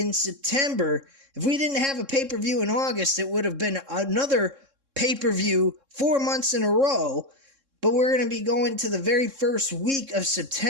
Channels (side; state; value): left; late; 3.7 ms